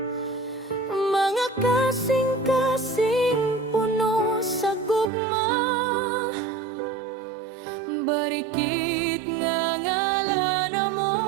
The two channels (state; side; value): drops out; left; at 5.1 s